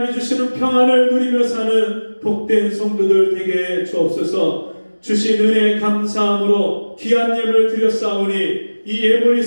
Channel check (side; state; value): both; inverted; correlation -1.00